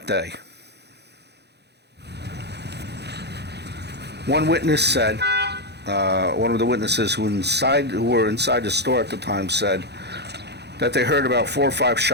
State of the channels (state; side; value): late; left; 0.49 ms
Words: day. One witness said, one of the witnesses who were inside the store at the time said that they heard about 4 or 5